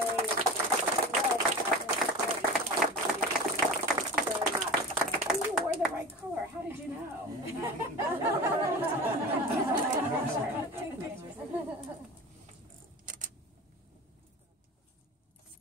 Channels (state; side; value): normal; both; correlation 0.32